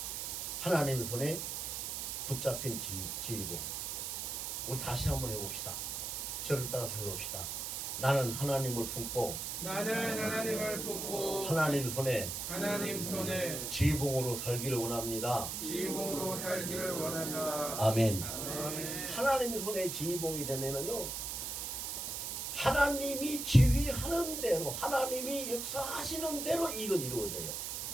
하나님 손에 붙잡힌 지휘고. 우리 다시 한번 해봅시다. 저를 따라서 해봅시다. 나는 하나님을 품고, 하나님 손에 지휘봉으로 살기를 원합니다. 아멘. 하나님 손에 지휘봉이 되면은요, 하나님이 지휘하는 대로, 하나님이 역사하시는 대로 일은 이루어져요.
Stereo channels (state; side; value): noise; right; hiss, 4 dB below the sound